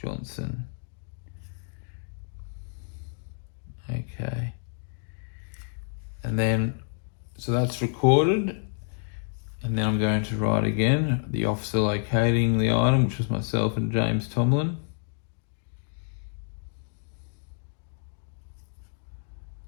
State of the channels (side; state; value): right; silent; digital silence